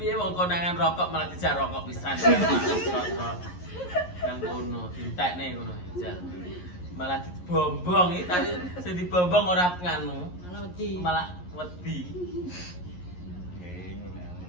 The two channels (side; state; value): right; late; 11 ms